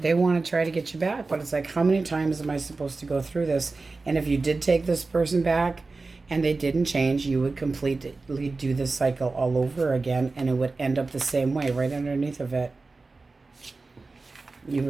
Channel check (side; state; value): left; quieter; 3.7 dB